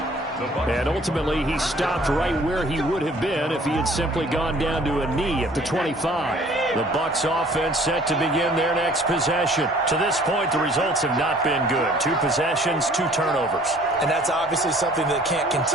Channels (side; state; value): both; normal; correlation 0.54